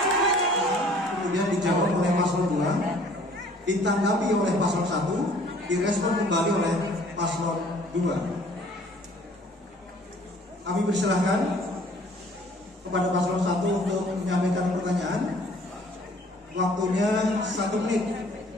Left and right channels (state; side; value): normal; both; correlation 0.55